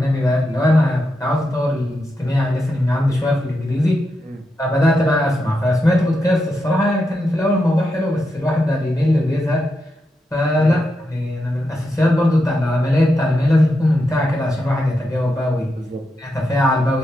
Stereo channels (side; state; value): both; normal; correlation 0.86